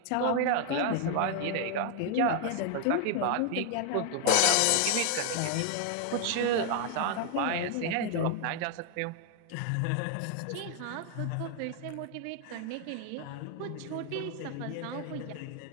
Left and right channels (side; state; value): both; different; correlation 0.00